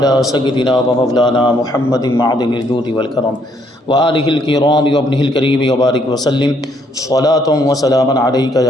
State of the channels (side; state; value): both; normal; correlation 0.69